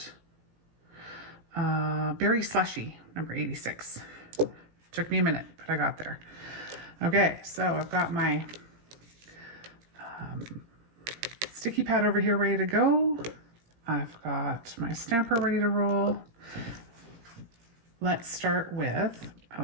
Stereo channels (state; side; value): late; left; 17 ms